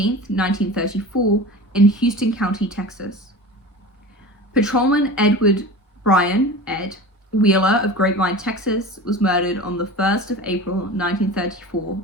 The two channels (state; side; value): normal; both; correlation 0.34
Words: 1934 in Houston County, Texas. Patrolman Edward Bryan, Ed, Wheeler of Grapevine, Texas, was murdered on the 1st of April 1934